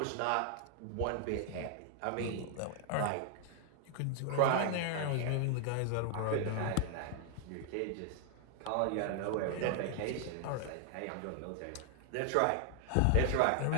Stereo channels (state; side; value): different; both; correlation 0.00